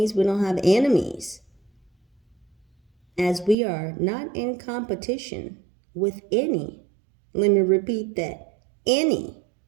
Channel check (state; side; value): drops out; left; at 3.6 s